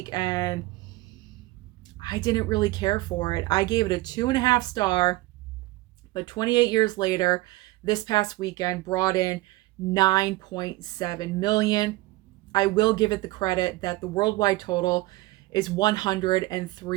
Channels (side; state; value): left; quieter; 19.4 dB